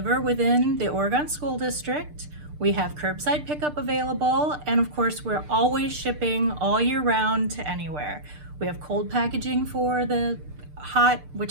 within the Oregon School District. We have curbside pickup available. And of course, we're always shipping all year round to anywhere. We have cold packaging for the hot,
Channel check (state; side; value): late; left; 6.7 ms